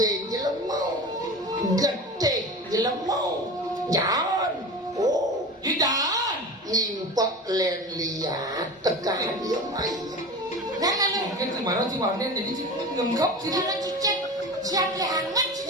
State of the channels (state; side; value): normal; both; correlation 0.31